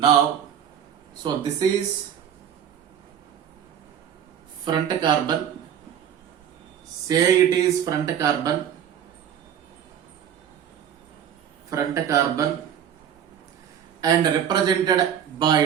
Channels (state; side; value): quieter; left; 9.2 dB